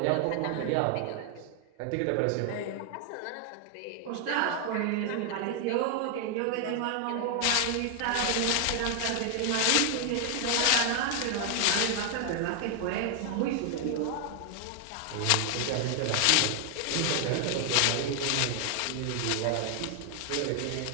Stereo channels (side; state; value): both; different; correlation 0.00